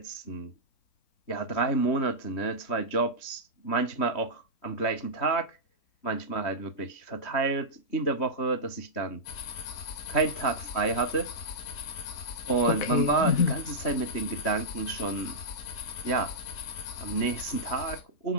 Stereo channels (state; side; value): late; right; 3.2 ms